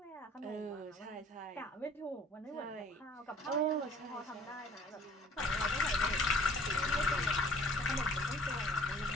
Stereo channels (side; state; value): both; normal; correlation 0.53